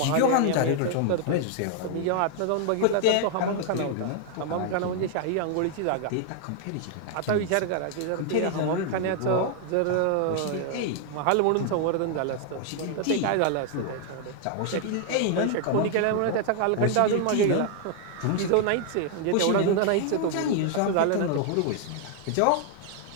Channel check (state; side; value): different; both; correlation 0.00